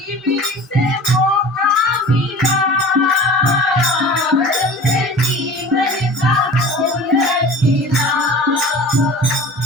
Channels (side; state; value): both; normal; correlation 0.39